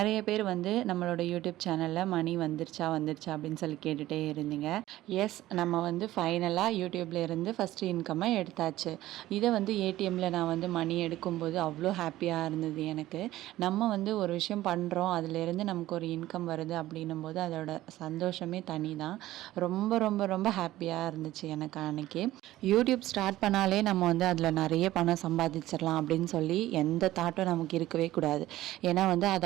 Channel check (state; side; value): quieter; left; 15.4 dB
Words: பேர் நம்மளோட யூடியூப் சேனலில் மணி வந்துருச்சா அப்படின்னு சொல்லி கேட்டுகிட்டே இருந்தீங்க. எஸ், நம்ம ஃபைனலாக யூடியூப்ல இருந்து ஃபஸ்ட்டு இன்கம்மை எடுத்தாச்சு. இதை ஏடிஎம்மில் நான் மணி எடுக்கும்போது அவ்வளோ ஹாப்பியாக இருந்தது எனக்கு. நம்ம ஒரு விஷயம் பண்ணுறோம், அதிலேருந்து நமக்கு ஒரு இன்கம் வருது அப்படின்னும் போது அதோட சந்தோஷமே தனி தான். ரொம்ப ரொம்ப ரொம்ப ஹாப்பியாக இருந்துச்சு எனக்கு அன்றைக்கி. யூடியூப் ஸ்டார்ட் பண்ணாலே நம்ம அதில் நிறைய பணம் சம்பாதிச்சிடலாம் அப்படின்னு சொல்லி எந்த தாட்டும் நமக்கு இருக்கவே கூடாது. ஏன்னா அது